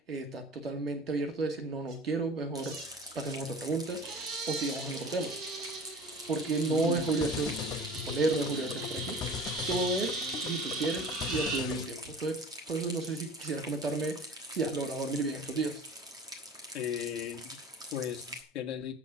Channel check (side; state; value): both; normal; correlation 0.41